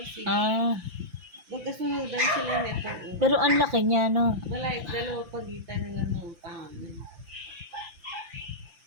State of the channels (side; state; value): left; late; 5.8 ms